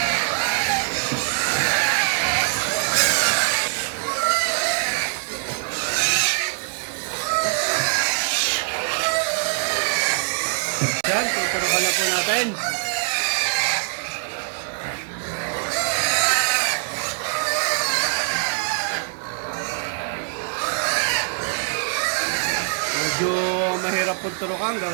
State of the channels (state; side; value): silent; left; digital silence